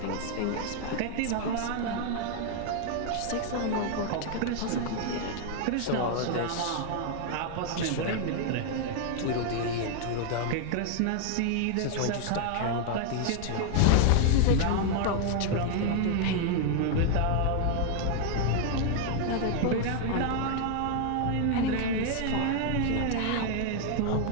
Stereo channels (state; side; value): different; both; correlation 0.00